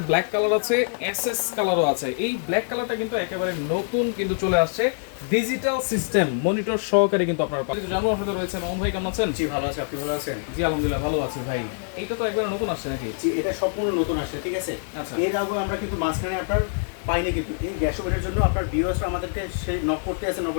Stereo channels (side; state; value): right; silent; 62 dB below the other